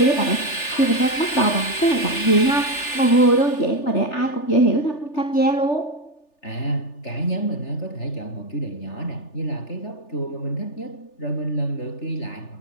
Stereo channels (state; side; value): late; right; 3.4 ms